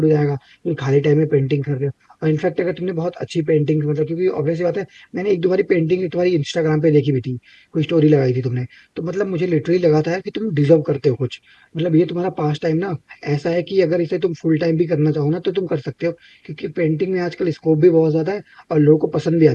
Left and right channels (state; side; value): identical; both; correlation 1.00